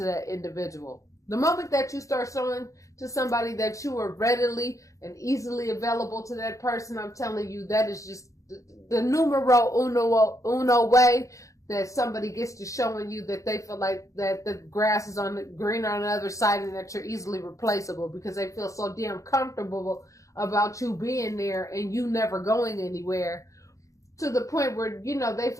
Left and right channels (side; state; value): right; late; 0.15 ms